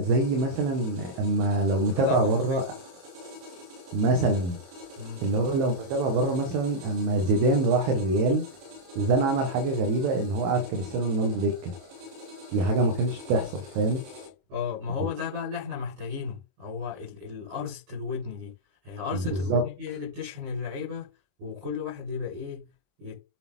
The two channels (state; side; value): late; left; 22 ms